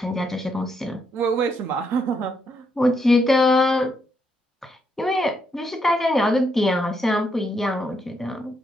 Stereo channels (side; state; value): both; normal; correlation 0.77